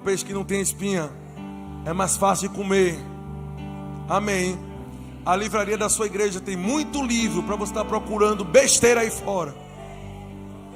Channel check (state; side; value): identical; both; correlation 1.00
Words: que não tem espinha. É mais fácil de comer. Amém. A livraria da sua igreja tem muito livro para você estar procurando besteira aí fora.